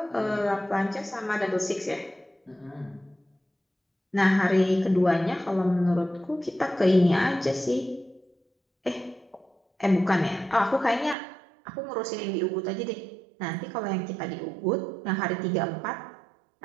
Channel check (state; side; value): drops out; left; at 11.2 s